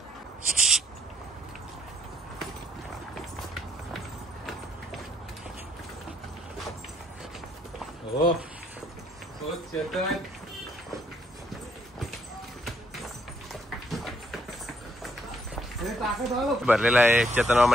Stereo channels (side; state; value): both; normal; correlation 0.69